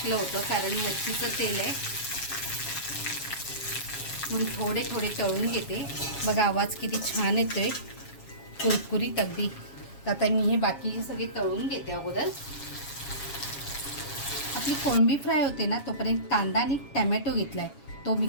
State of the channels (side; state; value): right; late; 7.3 ms